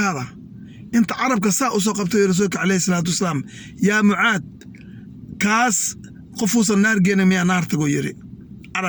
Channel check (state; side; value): identical; both; correlation 1.00